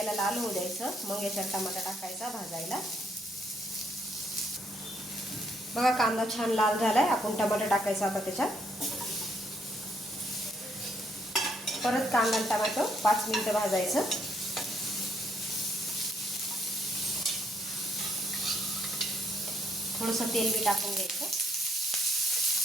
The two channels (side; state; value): both; normal; correlation 0.71